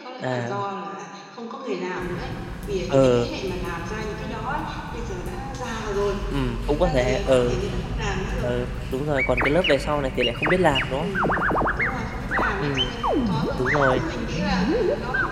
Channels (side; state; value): both; identical; correlation 1.00